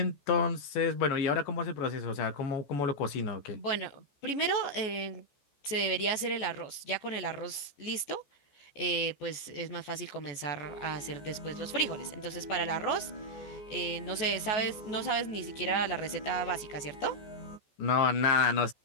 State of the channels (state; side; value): late; right; 14 ms